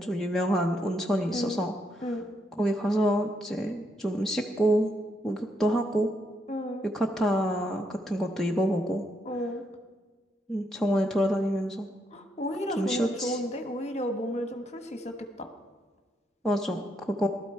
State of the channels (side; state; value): both; normal; correlation 0.77